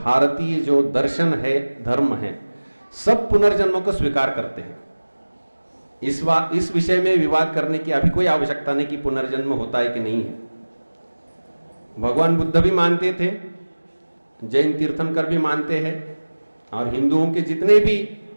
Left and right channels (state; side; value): inverted; both; correlation -1.00